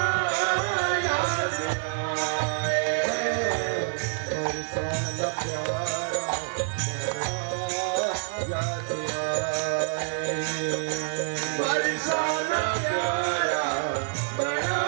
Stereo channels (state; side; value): silent; left; 60 dB below the other